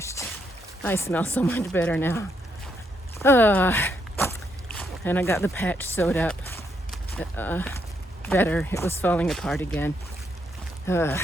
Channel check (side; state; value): both; normal; correlation 0.77